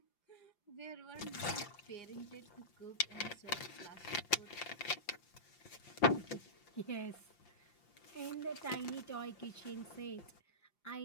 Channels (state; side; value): late; right; 5.8 ms